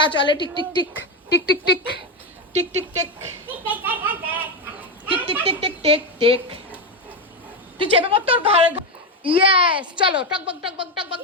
চলে tick tick tick tick tick tick tick tick tick tick tick tick tick tick tick. তুই চেপে পড় তোর ঘর। ইয়েস, চলো টকবক টকবক টকবক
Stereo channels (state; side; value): normal; both; correlation 0.11